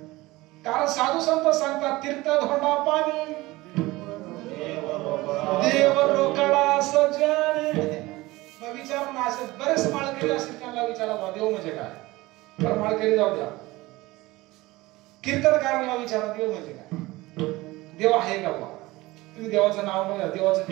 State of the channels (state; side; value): quieter; left; 20.0 dB